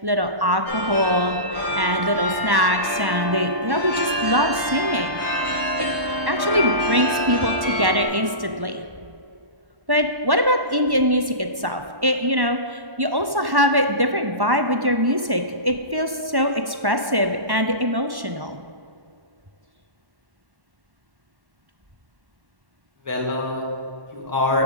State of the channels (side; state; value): left; late; 1.1 ms